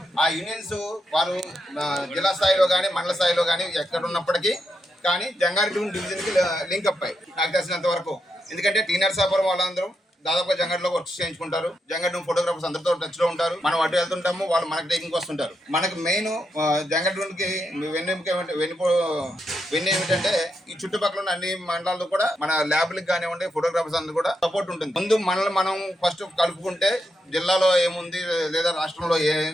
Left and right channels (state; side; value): normal; both; correlation 0.83